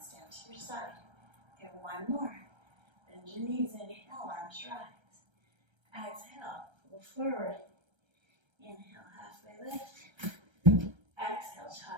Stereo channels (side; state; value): left; late; 1.3 ms